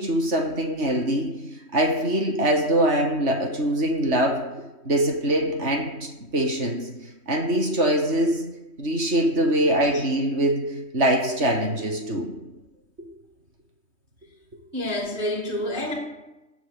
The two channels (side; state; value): left; late; 3.2 ms